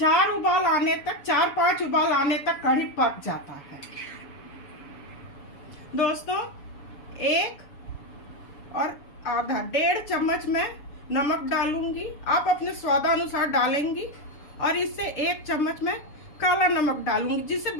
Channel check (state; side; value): late; right; 7.0 ms